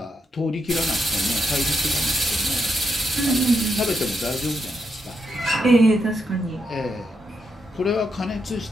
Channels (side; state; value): both; normal; correlation 0.82